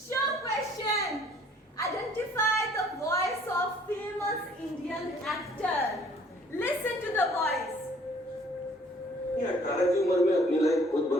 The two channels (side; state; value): both; normal; correlation 0.57